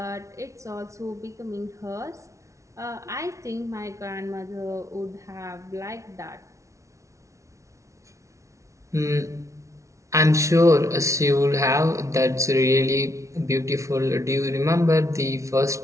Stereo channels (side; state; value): left; late; 0.14 ms